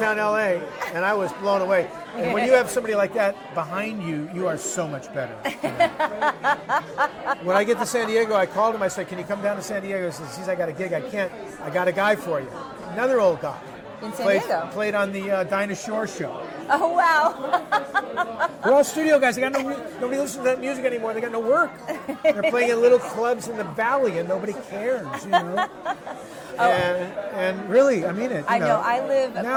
LA, and I was blown away. And when you have somebody like that behind you, you are so much better. When I get to San Diego, I called him. I said, "Can you come down to San Diego?" He says, "Geez, I got a gig. I can't. I got a guy for you." Another old guy. In San Diego? Played on the Dinah Shore show. Oh, wow. We're all studio guys. Nobody listens to that music anymore. They got no work. They're playing in little clubs in the valley, and nobody cares, And really, I mean it. I know. I live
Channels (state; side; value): identical; both; correlation 1.00